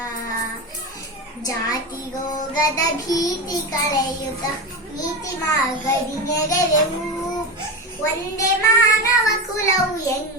ಜಾತಿ ರೋಗದ ಭೀತಿ ಕಳೆಯುತ್ತ ನೀತಿ ಮಾರ್ಗದಿ ನೆರೆವೆವು. ಒಂದೇ ಮಾನವ ಕುಲವು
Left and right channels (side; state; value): both; normal; correlation 0.20